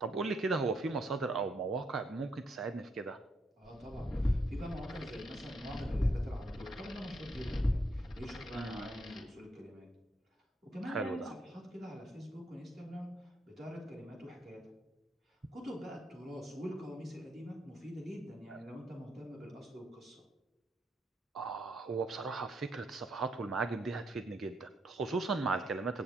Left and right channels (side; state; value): both; normal; correlation 0.76